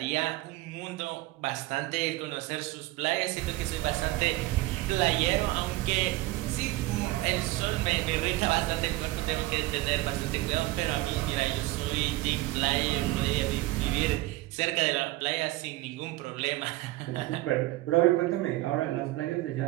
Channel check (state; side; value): quieter; left; 18.5 dB